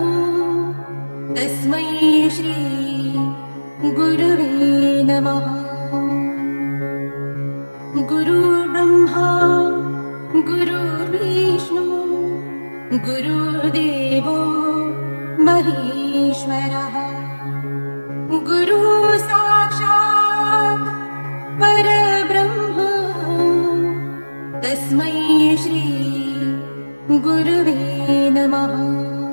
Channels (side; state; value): both; inverted; correlation -1.00